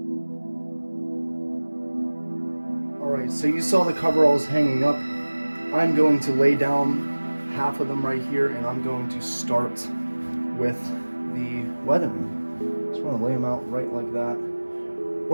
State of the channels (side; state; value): both; inverted; correlation -1.00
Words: Alright, so you saw the coveralls hanging up. I'm going to lay down half of them right here, and I'm going to start with the weathering. Just want to lay them out right like that.